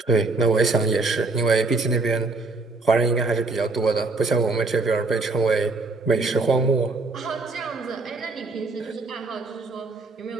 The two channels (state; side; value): quieter; left; 3.6 dB